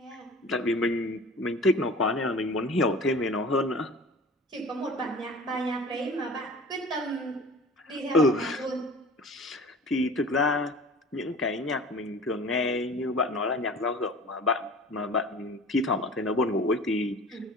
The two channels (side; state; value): both; normal; correlation 0.41